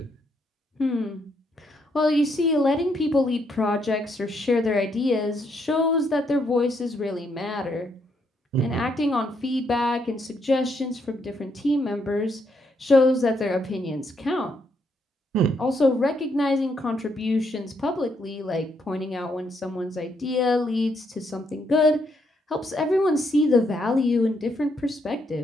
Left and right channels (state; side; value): normal; both; correlation 0.75